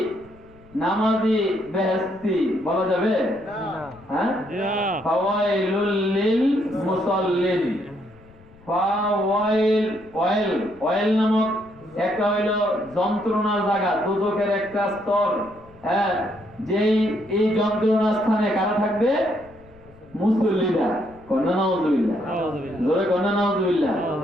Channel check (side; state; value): left; noise; rumble, 25 dB below the sound